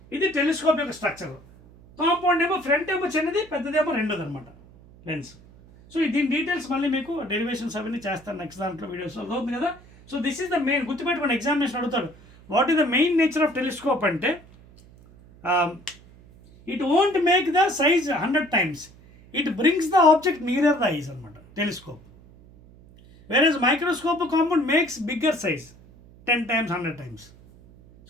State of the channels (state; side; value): noise; right; hum, 24 dB below the sound